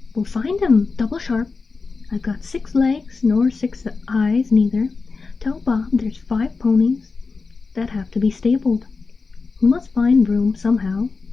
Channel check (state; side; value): quieter; right; 4.3 dB